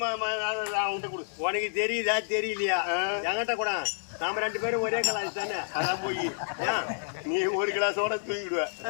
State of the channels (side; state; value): right; silent; digital silence